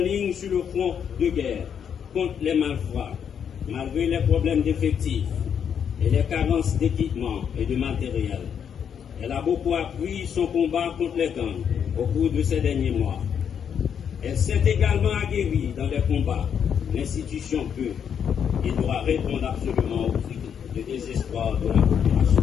lignes sur le front de guerre contre les malfrats, malgré les problèmes d'effectifs et les carences d'équipement et de matériel. Elle a beaucoup appris son combat contre les gangs au cours de ces derniers mois. Elle s'est également aguerrie dans les combats. L'institution peut et doit répondre absolument au cri de désespoir de la population.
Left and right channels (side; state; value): right; quieter; 7.9 dB